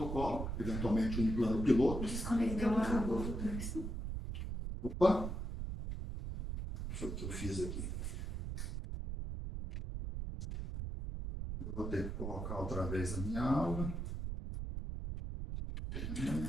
eventualmente um plano piloto. Opa! Deixa eu ver o que eu fiz aqui. Eu vou ter que colocar outra vez a minha aula.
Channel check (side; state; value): right; noise; rumble, 4 dB below the sound